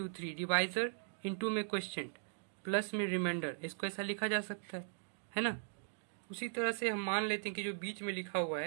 3 डिवाइजर, इंटू में क्वेश्चन, प्लस में रिमाइंडर, इसको ऐसा लिखा जा सकता है ना। उसी तरह से हम मान लेते हैं कि जो बीच में लिखा हुआ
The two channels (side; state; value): left; silent; digital silence